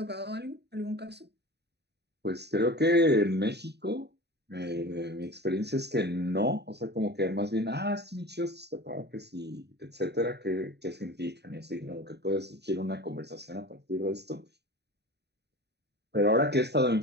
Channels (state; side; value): late; left; 0.49 ms